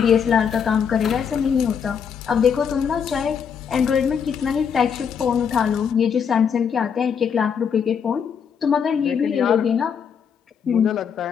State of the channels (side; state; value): right; quieter; 7.1 dB